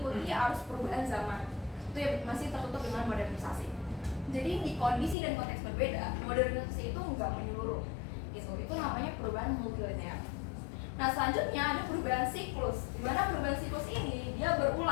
arus perubahan zaman. itu ya masih tertutup dengan modernisasi. Jadi di kondisi dan konteks berbeda, modernisasi itu nggak menyeluruh gitu. Itu namanya perubahan multilinear. Nah selanjutnya ada perubahan siklus, di mana perubahan siklus ini dia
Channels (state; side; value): drops out; right; at 5.2 s